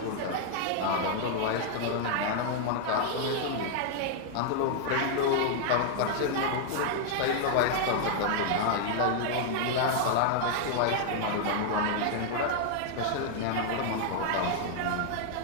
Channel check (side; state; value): both; different; correlation 0.00